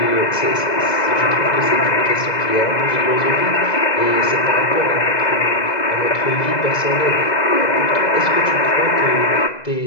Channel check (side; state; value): right; late; 2.0 ms